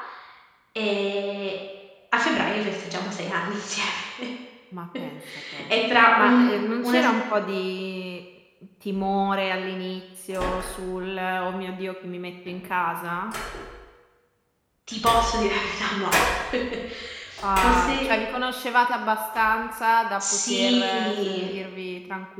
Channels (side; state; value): both; identical; correlation 1.00